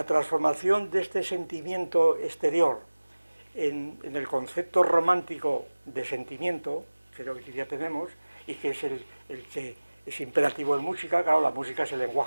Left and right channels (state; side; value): inverted; both; correlation -1.00